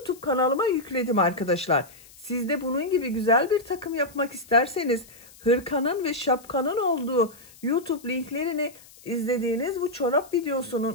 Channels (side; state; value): left; noise; hiss, 23 dB below the sound